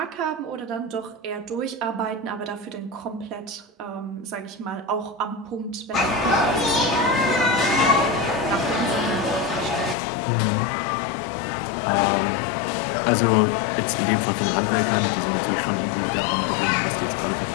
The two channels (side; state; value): right; drops out; at 10.0 s